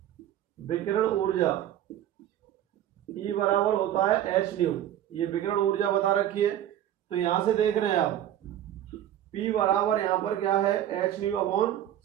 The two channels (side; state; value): left; quieter; 11.6 dB